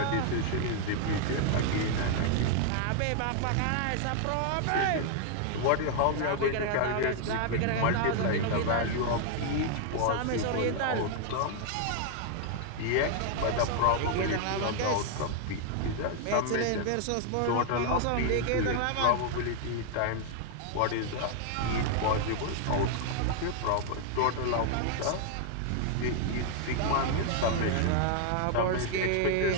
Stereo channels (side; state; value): both; different; correlation 0.00